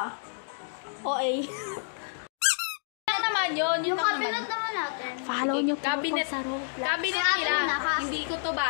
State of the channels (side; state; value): right; silent; digital silence